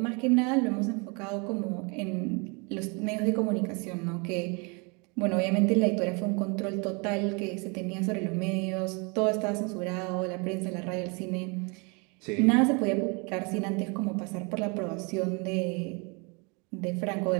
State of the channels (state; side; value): quieter; left; 31.6 dB